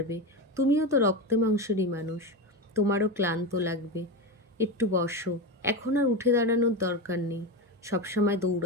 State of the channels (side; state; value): both; normal; correlation 0.18